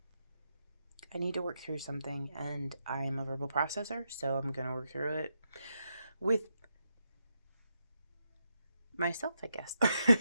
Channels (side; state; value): both; inverted; correlation -0.84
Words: need to work through something, and I'm a verbal processor, so I'm going to work through it with myself, I guess.